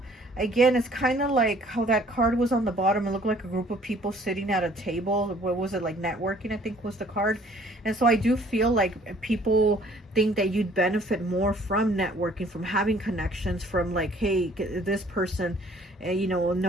again, it's kind of like how that card was on the bottom. It looked like a group of people sitting at a table. What was it, like networking, I think was the card. And so I do feel like people think that you'd benefit more from networking, from having connections, from like, hey, this person, you know,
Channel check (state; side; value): normal; both; correlation 0.57